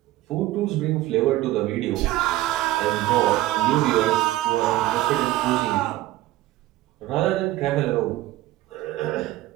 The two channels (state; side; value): quieter; left; 16.4 dB